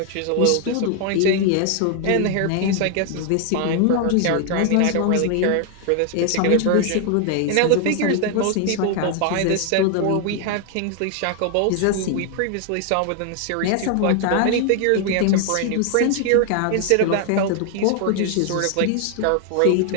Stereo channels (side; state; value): both; different; correlation 0.00